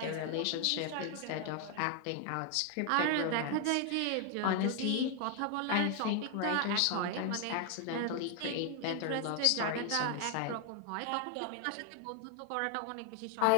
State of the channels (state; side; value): different; both; correlation 0.00